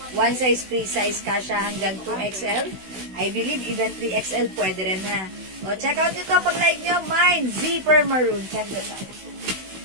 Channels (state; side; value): late; left; 16 ms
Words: One size, free size, kasha hanggang 2XL. I believe even 3XL pwede rin, ha. O, check out nyo to pag like nyo. Mine, zipper maroon. Check this out.